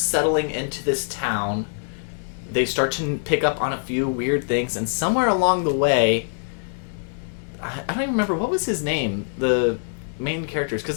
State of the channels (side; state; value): right; silent; digital silence